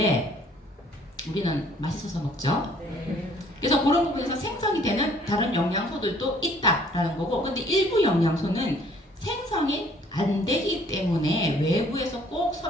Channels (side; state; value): both; normal; correlation 0.59